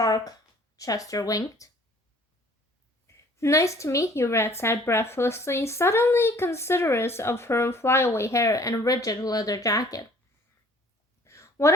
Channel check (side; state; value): both; normal; correlation 0.55